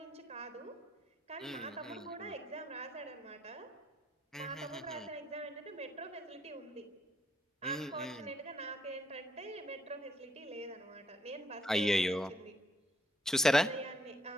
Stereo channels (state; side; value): normal; both; correlation 0.72